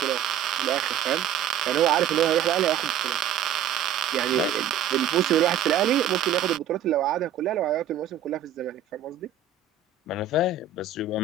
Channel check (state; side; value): quieter; left; 8.5 dB